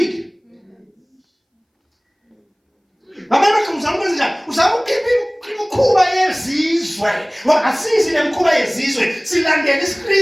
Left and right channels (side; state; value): both; identical; correlation 1.00